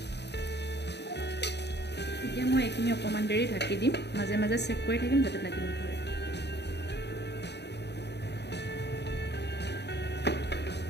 এতিয়া মই এইখিনি অকণমান দেৰি ঢাকি দিম মাজে মাজে চেক কৰি থাকিম যাতে লাগি নধৰে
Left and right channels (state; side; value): late; right; 0.49 ms